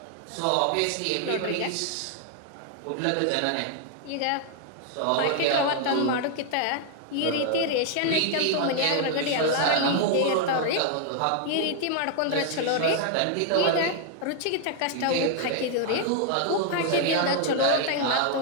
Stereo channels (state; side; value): different; both; correlation 0.00